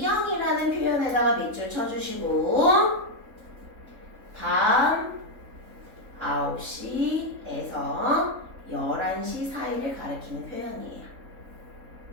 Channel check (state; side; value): late; left; 3.7 ms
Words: 표현에다가 밑줄 쳐주시고 밤 9시에서 11시 사이를 가리키는 표현이에요.